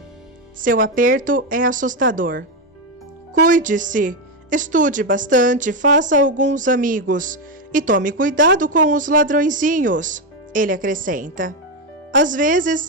Seu aperto é assustador. Cuide-se, estude bastante, faça alguns amigos e tome cuidado com os ladrõezinhos, ele acrescenta. Às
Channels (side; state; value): both; normal; correlation 0.08